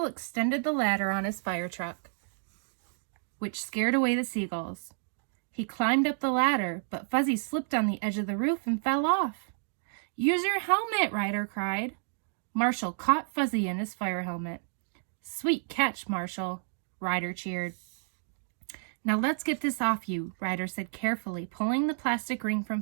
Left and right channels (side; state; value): left; silent; digital silence